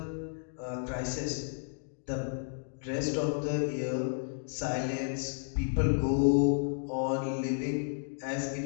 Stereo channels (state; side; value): silent; right; digital silence